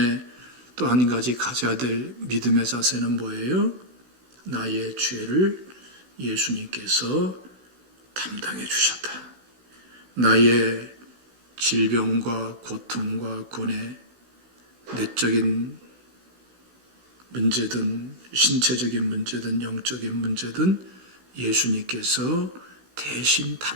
또 한 가지 가져야 될 믿음의 자세는 뭐예요? 나의 죄를 예수님께서 담당해 주셨다. 나의 질병과 고통과 고뇌, 내적인 문제든 신체적인 문제든 영적인 문제든 예수님께서 대신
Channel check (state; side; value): late; left; 16 ms